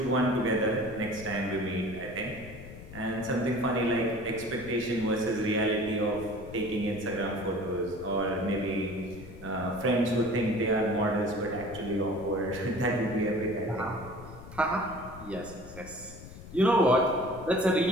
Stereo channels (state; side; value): noise; left; rumble, 15 dB below the sound